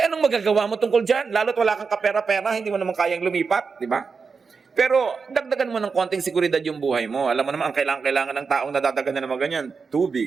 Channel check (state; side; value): quieter; left; 5.1 dB